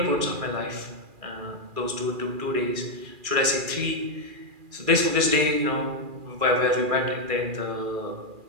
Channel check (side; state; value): left; late; 2.4 ms